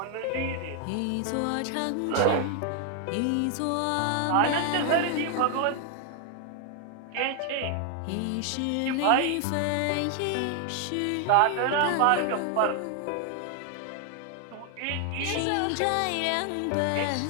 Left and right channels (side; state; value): both; different; correlation 0.00